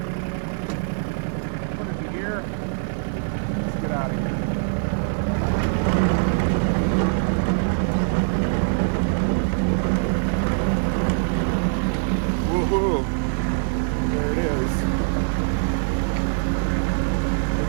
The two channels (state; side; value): silent; left; 63 dB below the other